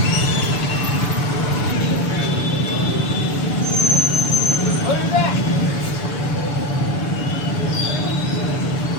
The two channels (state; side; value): late; right; 6.9 ms